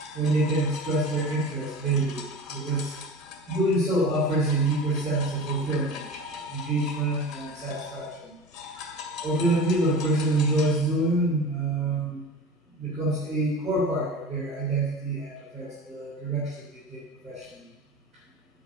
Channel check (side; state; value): both; normal; correlation 0.33